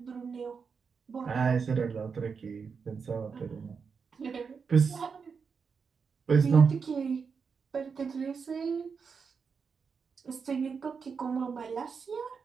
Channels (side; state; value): left; quieter; 5.7 dB